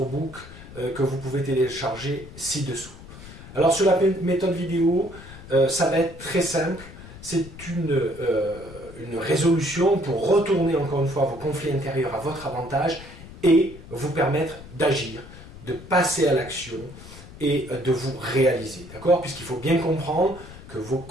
book que vous pouvez télécharger ci-dessous. Alors sur la méthode vidéo, ça va être très simple, c'est une résolution pour retourner encore une fois vos conflits intérieurs à votre avantage et vous permettre d'agir, de passer à l'action et de vous réaliser, d'accord? Puisqu'il faut bien comprendre que vos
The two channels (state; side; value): noise; left; rumble, 16 dB below the sound